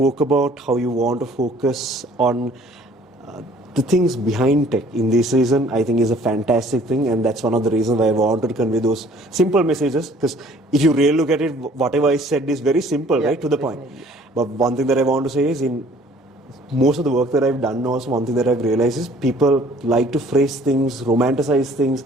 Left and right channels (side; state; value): both; normal; correlation 0.55